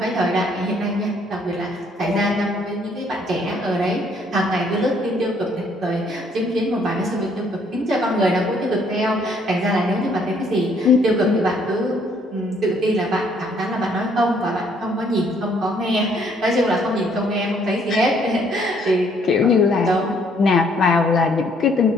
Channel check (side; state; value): both; normal; correlation 0.65